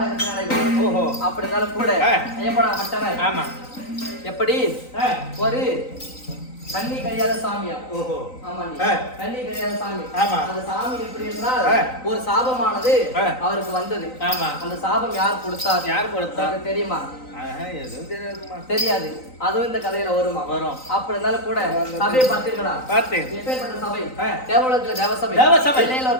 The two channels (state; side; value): late; right; 3.9 ms